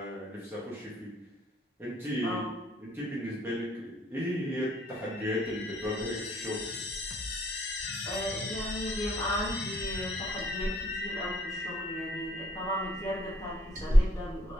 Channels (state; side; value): normal; both; correlation 0.65